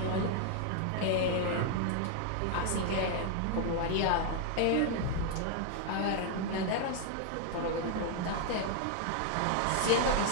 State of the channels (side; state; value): both; different; correlation 0.00